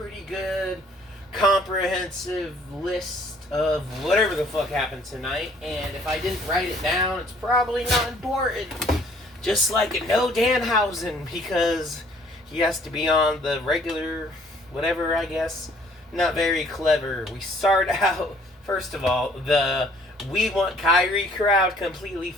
good, comprehensive list of whatever the fuck happened tonight, and if I didn't write it down, it's probably not important. Just like No Danhausen, because he has to be on the regular, whatever, I guess. Not very clever. We start out, first of all, the We Want Kyrie crowd completely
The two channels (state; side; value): normal; both; correlation 0.59